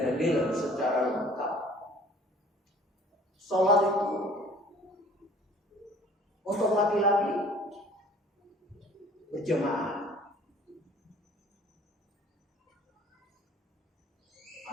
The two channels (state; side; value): normal; both; correlation 0.51